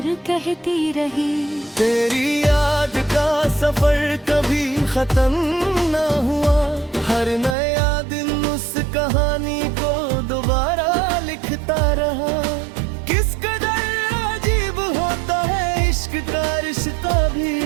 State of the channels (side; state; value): left; drops out; at 7.6 s